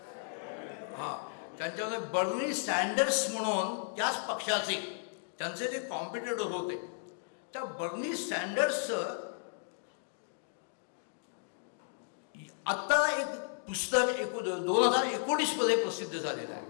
हां, त्यांच्यामध्ये बर्नी सँडर्स म्हणून त्याच पक्षाचे त्यांचे जे कॉम्पिटिटर होते त्या बर्नी सँडर्सचं आत्ता एक पुस्तक 2019 मध्ये प्रसिद्ध झालेलं आहे.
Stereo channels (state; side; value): silent; right; digital silence